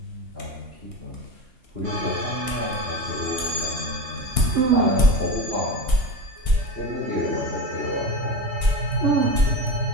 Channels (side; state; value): left; late; 2.8 ms